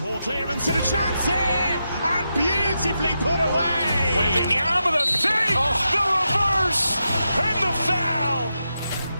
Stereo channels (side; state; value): both; inverted; correlation -0.87